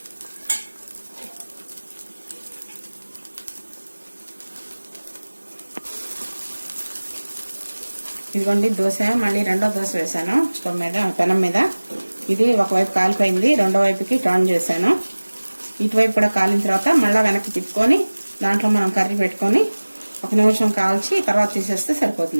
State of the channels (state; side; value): inverted; both; correlation -1.00